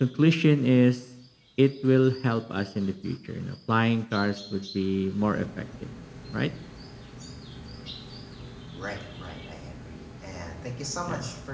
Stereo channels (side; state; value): both; identical; correlation 1.00